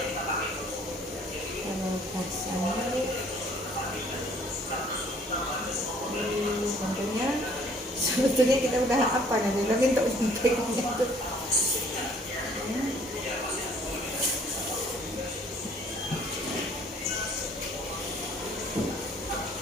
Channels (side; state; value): both; normal; correlation 0.57